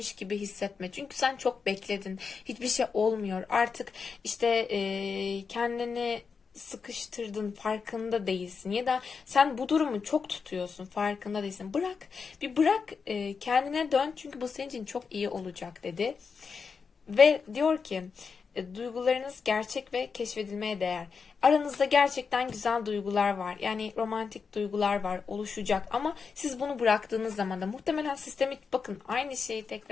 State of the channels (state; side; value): quieter; right; 5.5 dB